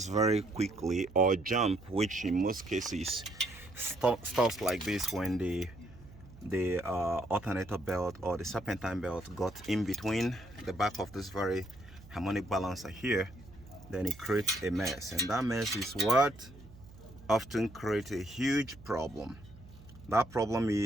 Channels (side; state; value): right; noise; hum, 20 dB below the sound